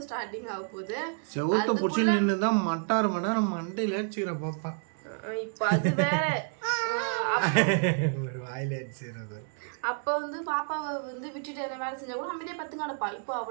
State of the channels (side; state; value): left; silent; 58 dB below the other